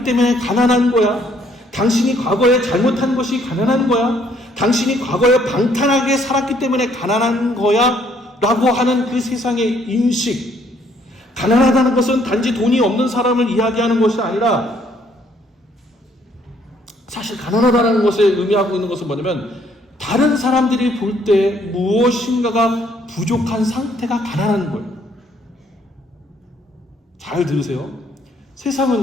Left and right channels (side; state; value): both; normal; correlation 0.66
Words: 때문에 가난한 거야. 당신이 과거에 잘못한 것이 가난한 거야. 당신이 과거에 방탕하게 살았기 때문에 가난한 거야 라고 하는 그 세상의 인식. 가난하다는 것은 단지 돈이 없는 사람을 이야기하는 것이 아니라, 사실 가난하다는 것에 의미하고 있는 것은 뭐냐면 다른 사람들이 볼 때 무엇인가가 부족한 상태가 가난한 거예요. 잘 들으세요.